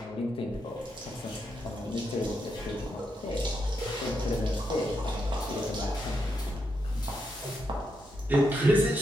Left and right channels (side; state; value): both; normal; correlation 0.82